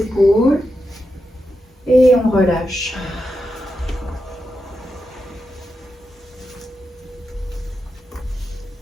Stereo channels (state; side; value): normal; both; correlation 0.87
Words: et on relâche.